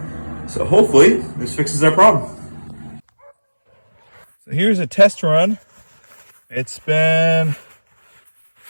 So hopefully this fixes our problem. So here's a test run. It's been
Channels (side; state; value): both; inverted; correlation -1.00